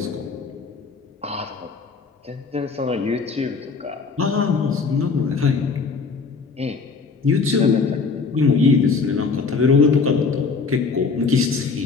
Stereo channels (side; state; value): right; quieter; 4.8 dB